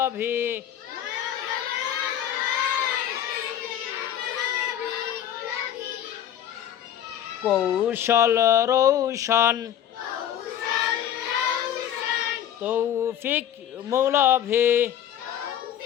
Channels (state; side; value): quieter; right; 10.6 dB